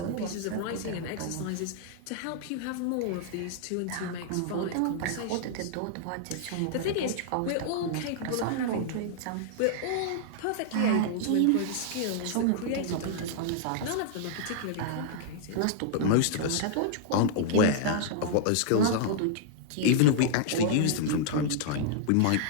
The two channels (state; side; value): different; both; correlation -0.01